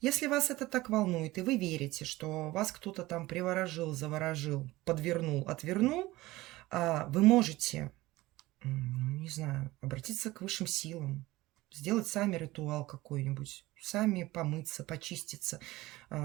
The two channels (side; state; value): left; quieter; 18.8 dB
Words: вас это так волнует, и вы верите, что вас кто-то там приворожил, заворожил, подвернул, отвернул, вы можете, не знаю, обратиться к высшим силам, сделать сами ритуал какой-нибудь, сами помыться, почиститься,